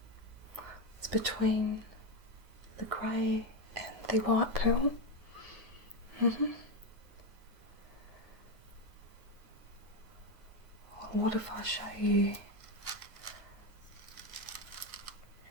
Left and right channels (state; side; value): late; left; 9.5 ms